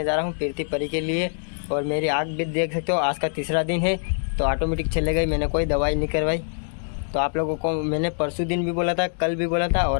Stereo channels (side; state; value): right; silent; digital silence